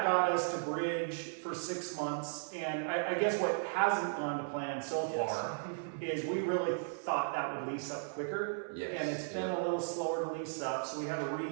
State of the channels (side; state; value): left; silent; digital silence